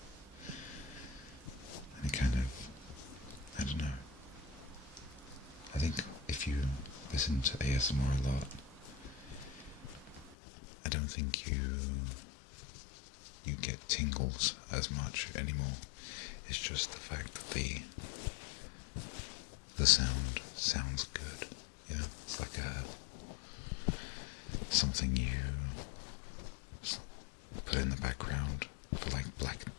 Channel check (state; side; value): drops out; right; at 10.4 s